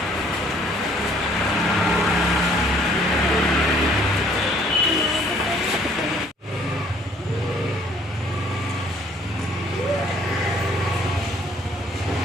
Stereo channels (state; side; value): normal; both; correlation 0.61